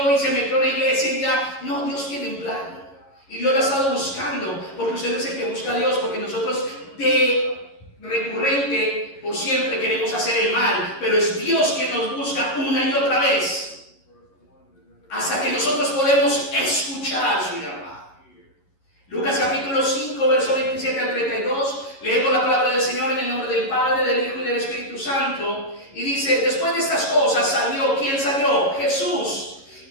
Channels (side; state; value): right; late; 11 ms